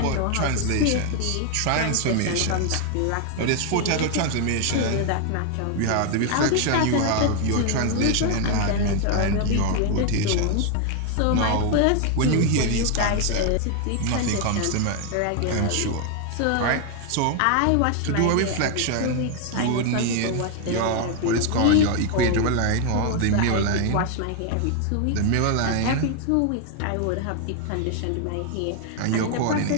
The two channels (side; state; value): both; different; correlation 0.00